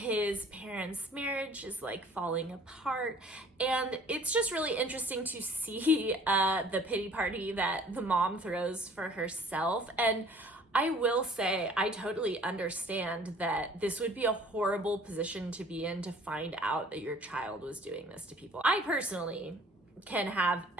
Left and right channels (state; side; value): normal; both; correlation 0.53